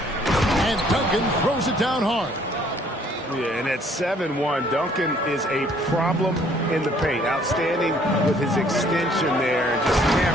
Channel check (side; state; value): both; normal; correlation 0.61